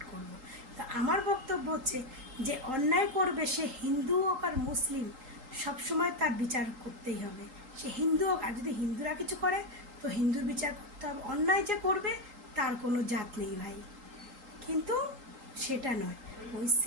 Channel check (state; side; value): late; left; 3.8 ms